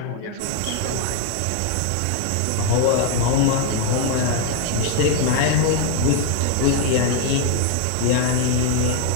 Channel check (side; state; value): both; different; correlation 0.00